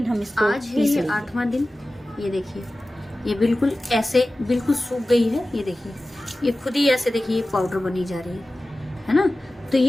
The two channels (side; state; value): both; normal; correlation 0.96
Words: हम इसको आज है ये 8वां दिन। ये देखिए ये बिल्कुल ऐसे बिल्कुल सूख गई है। ये देखिए ये खुद ही ऐसे देखिए पाउडर बनी जा रही है ना। तो